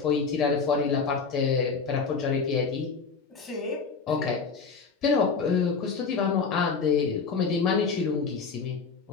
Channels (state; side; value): quieter; right; 5.2 dB